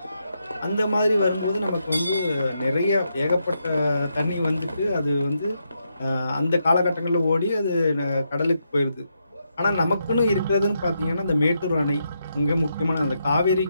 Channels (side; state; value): both; inverted; correlation -0.81